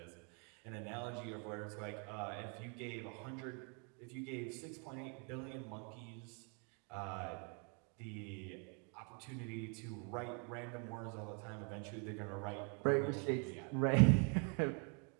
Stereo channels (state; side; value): quieter; left; 37.9 dB